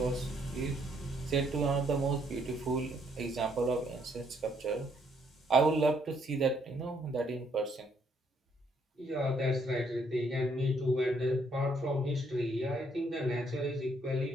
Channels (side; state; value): both; normal; correlation 0.70